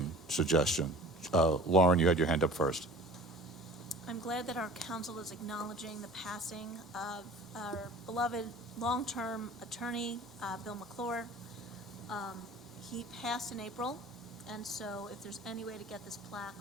suggestion? Lauren, you had your hand up first. I'm glad that our council is acknowledging the passing of our beloved long-term attorney, Bill McClure. He passed in April, and so if there's any way to get this plaque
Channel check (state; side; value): normal; both; correlation 0.43